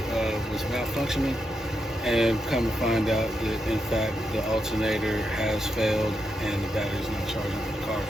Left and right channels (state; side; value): normal; both; correlation 0.84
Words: was malfunctioning, and come to find out that in fact the alternator has failed and the battery's not charging when the car is